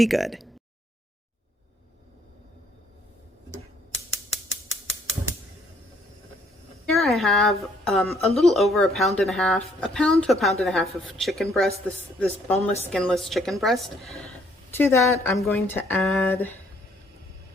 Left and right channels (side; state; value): both; normal; correlation 0.65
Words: good. Here I have a little over a pound to a pound and a half of chicken breast, this boneless, skinless chicken breast. To that, I'm going to add